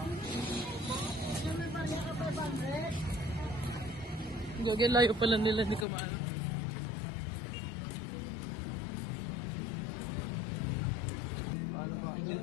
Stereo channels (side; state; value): right; drops out; at 5.9 s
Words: Gagi, layo pala nila, hindi ko maano.